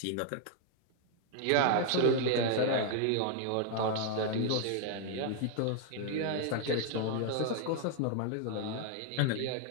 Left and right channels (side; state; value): both; different; correlation 0.00